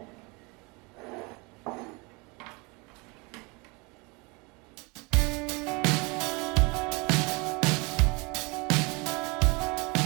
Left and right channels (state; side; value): quieter; left; 27.8 dB